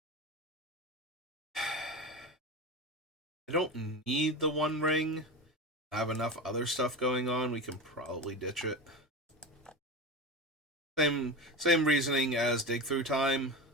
I don't need the One Ring. I have enough other stuff going on. We can probably ditch it. Same reasoning as Dig Through Time.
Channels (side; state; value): both; normal; correlation 0.25